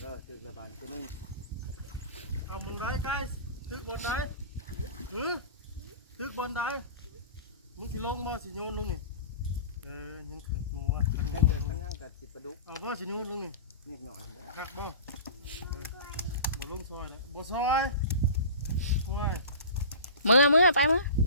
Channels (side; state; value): both; inverted; correlation -0.36